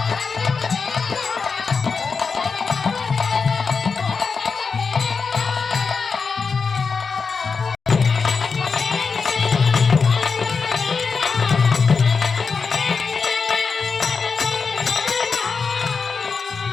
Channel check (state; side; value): quieter; right; 5.1 dB